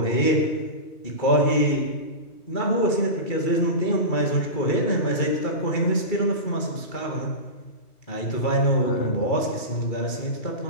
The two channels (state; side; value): late; right; 2.3 ms